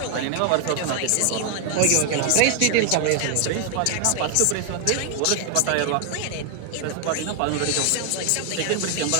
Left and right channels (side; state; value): both; different; correlation 0.00